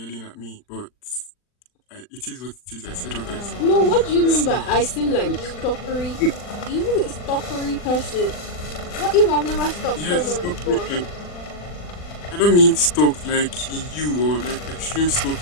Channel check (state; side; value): late; right; 40 ms